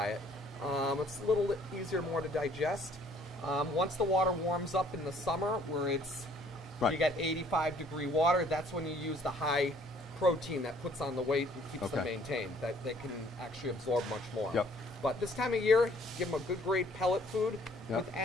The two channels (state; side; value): normal; both; correlation 0.59